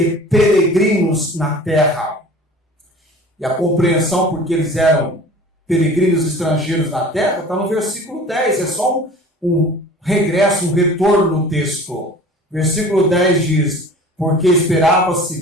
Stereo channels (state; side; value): normal; both; correlation 0.43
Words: peregrinos na terra. E a compreensão porque eles eram peregrinos e estrangeiros na terra está no versículo 10. É só um regresso, um retorno no texto. Versículo 10 diz: porque esperava a